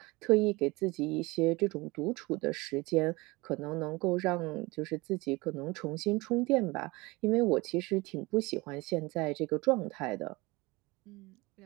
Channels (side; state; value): left; quieter; 23.2 dB